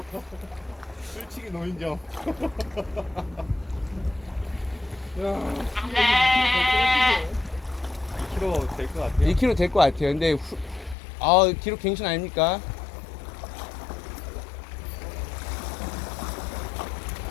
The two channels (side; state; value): right; drops out; at 11.0 s